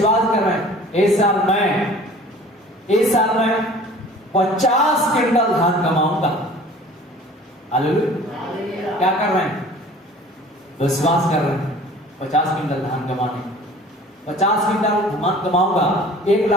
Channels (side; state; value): both; normal; correlation 0.47